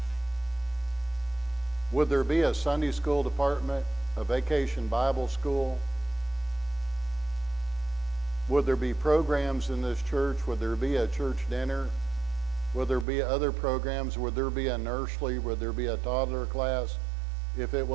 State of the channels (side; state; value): left; drops out; at 13.1 s